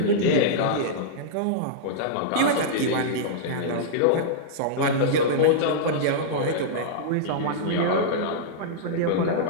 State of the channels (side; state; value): both; different; correlation -0.03